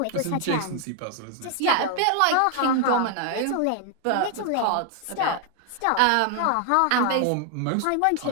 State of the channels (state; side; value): different; both; correlation 0.00